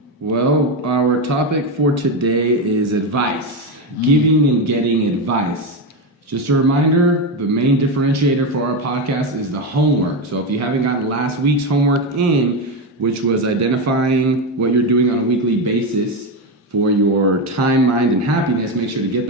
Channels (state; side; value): normal; both; correlation 0.12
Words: Well, our topic for today is advice, giving and getting advice. Just a reminder, the main differentiator for our podcast is the homework. So if you haven't gotten last week's homework in, which was identifying what you're doing on a weekly basis for your time, mind, and happiness, make sure to get